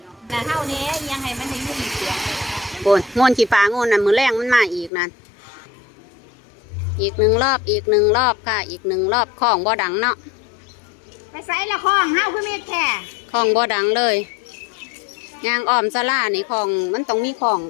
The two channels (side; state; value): right; drops out; at 4.9 s